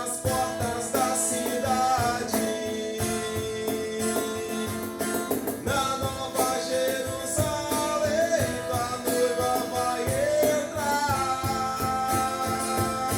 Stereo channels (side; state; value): both; identical; correlation 1.00